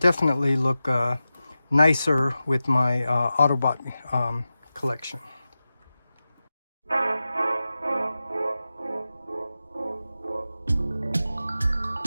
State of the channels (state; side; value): inverted; both; correlation -0.94